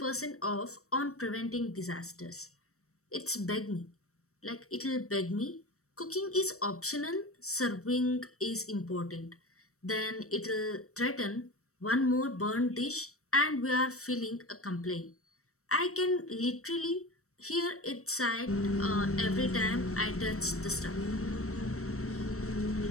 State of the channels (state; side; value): late; right; 0.64 ms